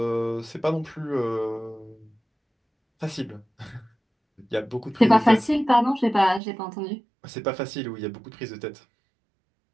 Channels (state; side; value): drops out; left; at 6.4 s